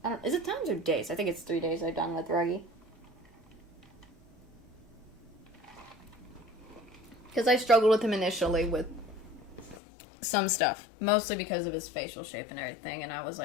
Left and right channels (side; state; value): right; drops out; at 9.8 s